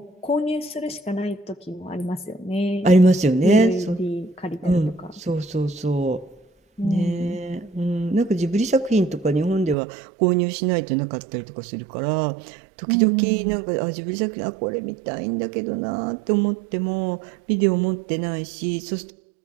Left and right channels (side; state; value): left; drops out; at 9.8 s